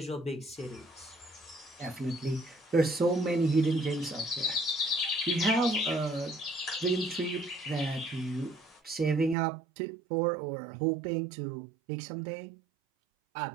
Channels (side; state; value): left; drops out; at 9.3 s